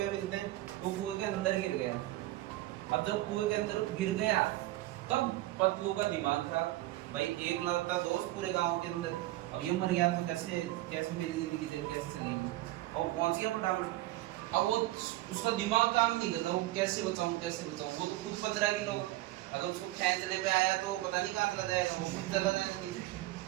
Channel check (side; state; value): left; quieter; 17.1 dB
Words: मिलते हैं, वो कुएं के अंदर गिर गया। अब जब कुएं के अंदर गिर गया तब पतलू का दिमाग खराब। भाई एक लड़ता दोस्त पूरे गांव के अंदर, अब ये मर गया तो कैसे कैसे मेरी जिंदगी कैसे चलेगी। अब पहुंच गया फटाफट। अब वो उसका दिमाग काम नहीं कर रहा, वो कैसे बचाऊं कैसे बचाऊं। वो तो खुद 15 किलो, अगर उसको खींचने पे आया तो पता नहीं कहाँ चला जाएगा, वो खुद चला जाएगा नीचे।